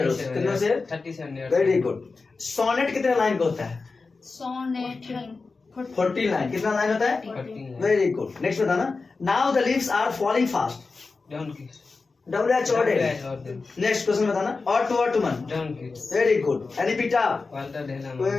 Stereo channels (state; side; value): quieter; right; 4.1 dB